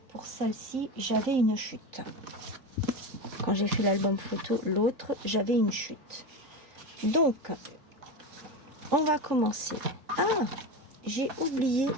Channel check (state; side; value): late; left; 3.4 ms